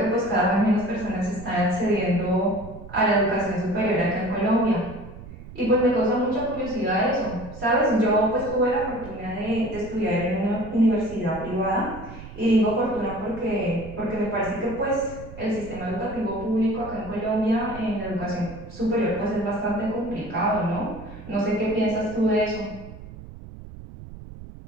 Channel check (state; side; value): noise; right; rumble, 15 dB below the sound